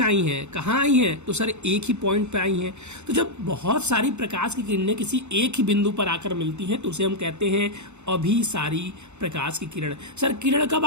हैं। कहाँ आई हैं? तो सर एक ही पॉइंट पे आई हैं। तो जब बहुत सारी प्रकाश की किरणें किसी एक ही बिंदु पर आकर मिलती हैं तो उसे हम कहते हैं अभिसारी प्रकाश की किरण। सर किरण कब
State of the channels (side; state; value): left; late; 0.82 ms